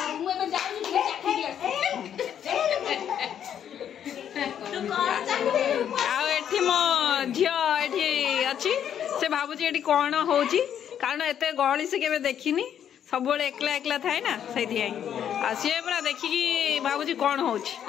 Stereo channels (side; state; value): right; quieter; 9.3 dB